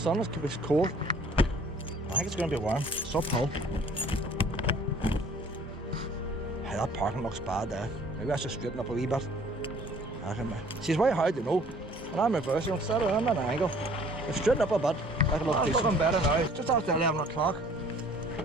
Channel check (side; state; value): both; normal; correlation 0.54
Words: it's cold. I think it's going to be warm. It's uphill. Hey, that parking looks bad there. Maybe I should straighten up a wee bit. See, it's very hard to know. When I'm reversing, I'm at an angle. If straighten up a bit, that'll look decent. It's looking better now. It's just after 11 o'clock.